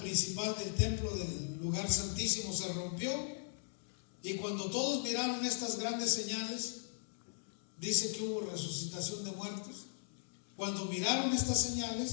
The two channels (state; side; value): silent; right; digital silence